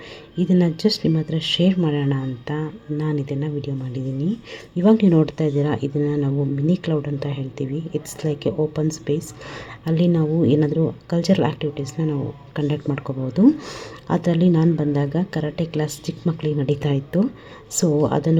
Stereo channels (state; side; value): identical; both; correlation 1.00